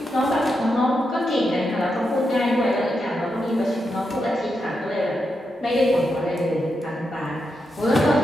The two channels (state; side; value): normal; both; correlation 0.85